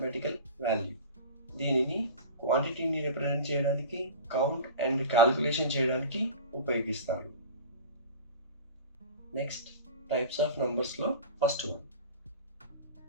value. దీనిని క్వాంటిటీని represent చేయడానికి, కౌంట్ అండ్ క్యాలిక్యులేషన్ చేయడానికి ఉపయోగిస్తారు. నెక్స్ట్, టైప్స్ ఆఫ్ నంబర్స్లో first one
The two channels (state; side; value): inverted; both; correlation -0.35